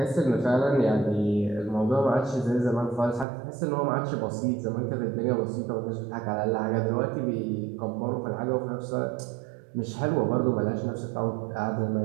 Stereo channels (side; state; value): left; drops out; at 3.2 s